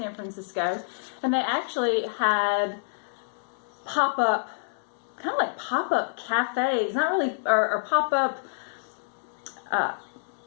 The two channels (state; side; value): silent; right; digital silence